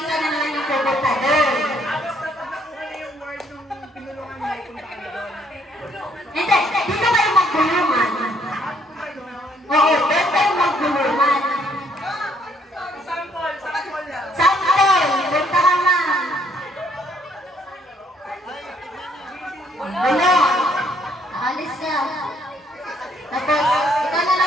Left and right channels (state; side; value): normal; both; correlation 0.67